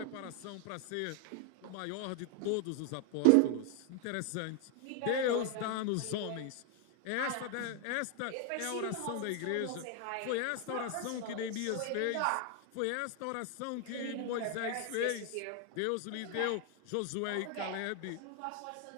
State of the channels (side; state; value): both; different; correlation 0.00